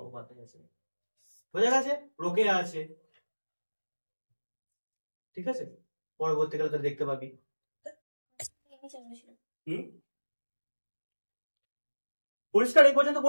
আছে। বোঝা গেছে? রোকেয়া আছে, ঠিক আছে, পরবর্তীকালে তো দেখতে পাবি। পরিষ্কার? এই পর্যন্ত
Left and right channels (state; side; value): inverted; both; correlation -1.00